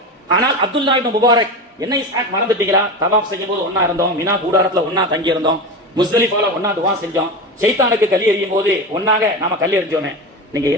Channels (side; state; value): both; normal; correlation 0.23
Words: ஆனால் அப்துல்லா இப்னு முபாரக், என்ன இஸ்ஹாக் மறந்துட்டீங்களா? தவாஃப் செய்யும் போது ஒன்னா இருந்தோம், மினா கூடாரத்துல ஒன்னா தங்கி இருந்தோம், முஸ்தலிஃபால ஒன்னா துவா செஞ்சோம், ஷைத்தானுக்கு கல் எறியும் போது ஒன்னாக நாம கல் எறிஞ்சோமே, நீங்க